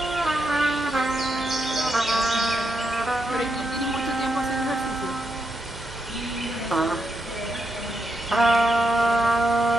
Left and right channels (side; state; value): both; normal; correlation 0.83